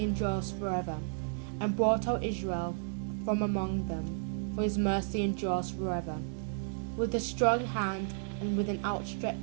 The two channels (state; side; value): silent; left; digital silence